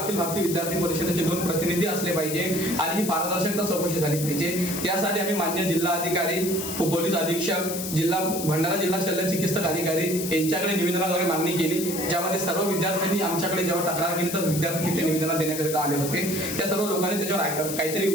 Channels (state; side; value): noise; left; hiss, 6 dB below the sound